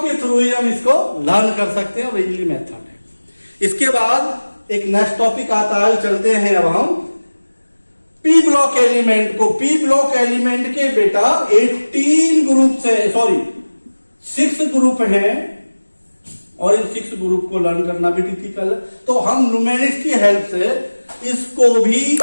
के थ्रू ही हम इसको लर्न कर सकते हैं और इजीली मेथड है। इसके बाद एक नेक्स्ट टॉपिक आता है, चलते हैं अब हम पी ब्लॉक एलिमेंट को। पी ब्लॉक एलिमेंट के बेटा 18 ग्रुप से 6 ग्रुप हैं और इन 6 ग्रुप को लर्न करना भी डिफिकल्ट है। तो हम न्यूमेरिक्स की हेल्प से इसको भी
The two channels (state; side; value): inverted; both; correlation -1.00